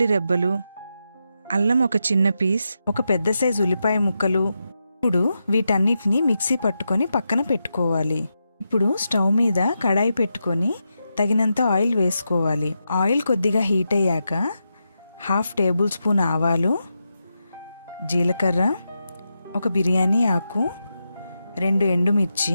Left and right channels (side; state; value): both; inverted; correlation -0.87